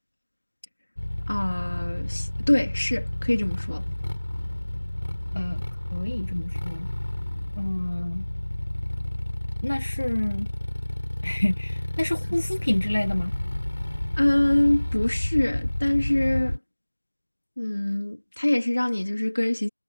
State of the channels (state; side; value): inverted; both; correlation -1.00